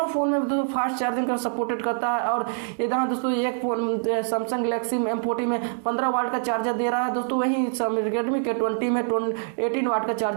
फोन में दोस्तों फास्ट चार्जिंग का सपोर्टेड करता है, और यहाँ दोस्तों एक फोन सैमसंग गैलेक्सी M40 में 15 वाट का चार्जर दे रहा है दोस्तों, वहीं रेडमी K20 में 18 वाट का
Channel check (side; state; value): left; silent; digital silence